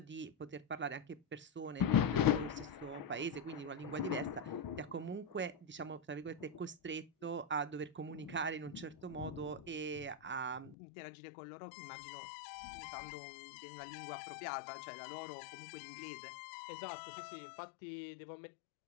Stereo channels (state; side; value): drops out; right; at 10.8 s